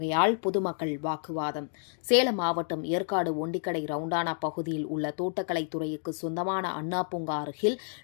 பொதுமக்கள் வாக்குவாதம். சேலம் மாவட்டம் ஏற்காடு ஒண்டிக்கடை ரவுண்டானா பகுதியில் உள்ள தோட்டக்கலைத்துறைக்கு சொந்தமான அண்ணா பூங்கா அருகில்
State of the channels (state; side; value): silent; right; 58 dB below the other